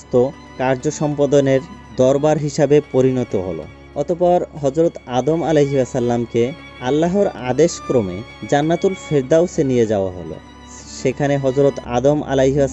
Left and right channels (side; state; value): both; identical; correlation 1.00